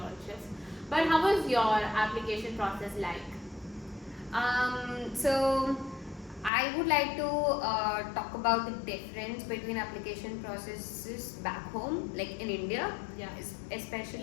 But how was your application process like? So I would like to talk about the difference between application processes back home, like in India, Yeah.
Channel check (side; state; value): right; drops out; at 6.5 s